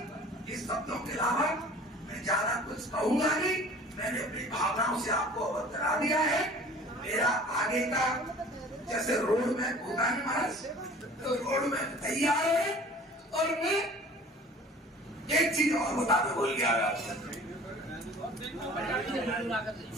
इस शब्दों के अलावा मैं ज्यादा कुछ कहूंगा नहीं। मैंने अपनी भावनाओं से आपको अवगत करा दिया है। मेरा आगे का जैसे रोड में होगा नहीं महाराज, तो रोड में तैयार है। और मैं एक चीज और बताते भूल गया आपसे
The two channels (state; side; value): normal; both; correlation 0.46